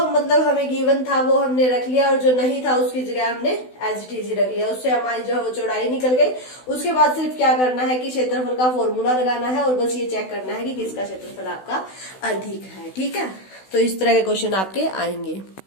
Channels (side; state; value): right; late; 16 ms